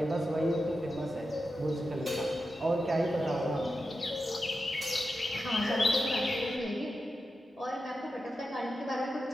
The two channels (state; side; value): normal; both; correlation 0.90